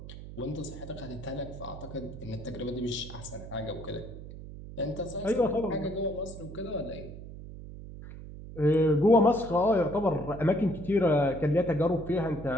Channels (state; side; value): noise; right; hum, 13 dB below the sound